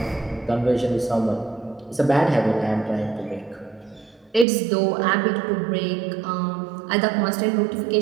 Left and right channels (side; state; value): left; drops out; at 4.5 s